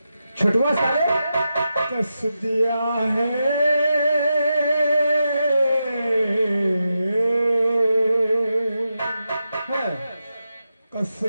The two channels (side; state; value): both; inverted; correlation -0.88